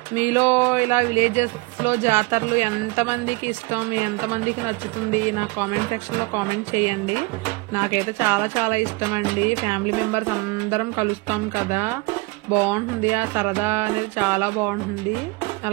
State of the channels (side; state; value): left; quieter; 25.4 dB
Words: మీలో ఇలా విలేజెస్ లో జాతరలు ఎంతమందికి ఇష్టం, ఎంతమందికి నచ్చుతుంది నాకు కామెంట్ సెక్షన్ లో కామెంట్ చేయండి. నాకైతే చాలా చాలా ఇష్టం అండి. ఫ్యామిలీ మెంబర్స్ అందరం కలుస్తాం కదా, బాగుంటుంది. ఆ సరదా అనేది చాలా బాగుంటుంది.